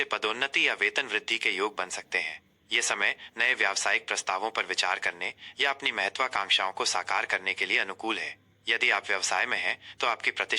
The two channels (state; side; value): identical; both; correlation 1.00